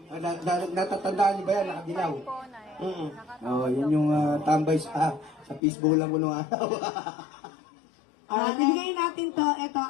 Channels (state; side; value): drops out; right; at 5.6 s